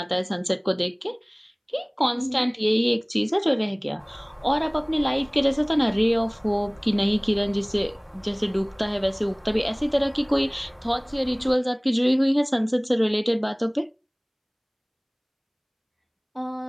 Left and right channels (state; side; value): identical; both; correlation 1.00